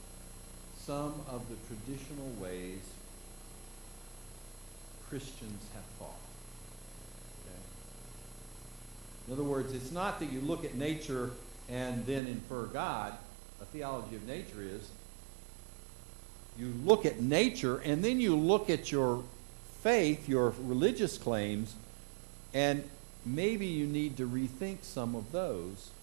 some of the traditional ways Christians have thought. Okay? In other words, it's not that you look at nature and then infer God. A theology of nature is you look at nature and then you look at your faith, your religious claims, and maybe you need to rethink some of those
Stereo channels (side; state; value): left; drops out; at 12.2 s